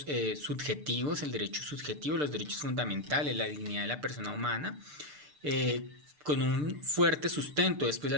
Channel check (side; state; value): left; late; 6.7 ms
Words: subjetivos, el derecho subjetivo, los derechos fundamentales, la dignidad de la persona humana, con un fuerte sustento después